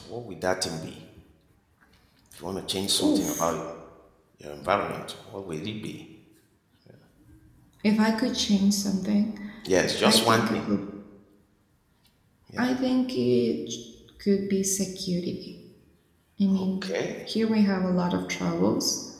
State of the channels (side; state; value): both; identical; correlation 1.00